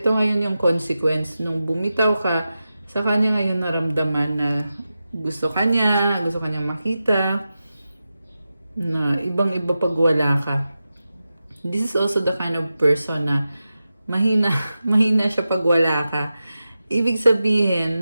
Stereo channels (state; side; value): inverted; both; correlation -0.92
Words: ngayon yung consequence. Nung bumitaw ka, sa kanya ngayon naramdaman na gusto kanyang makita, na ibang-iba pag wala ka. This is also the kind of person na mahina siya pag wala ka. Ibig sabihin,